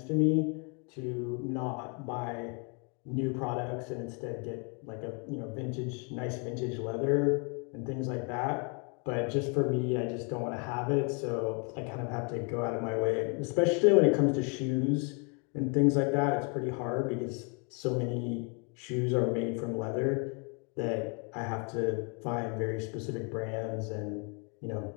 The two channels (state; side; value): quieter; right; 36.4 dB